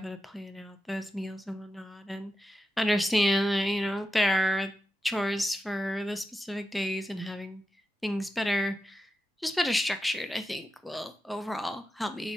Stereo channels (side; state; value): both; normal; correlation 0.90